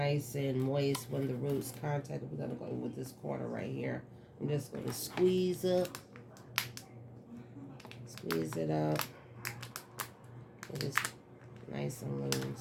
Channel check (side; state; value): both; identical; correlation 1.00